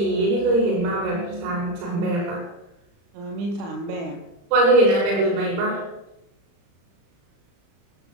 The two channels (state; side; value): late; left; 35 ms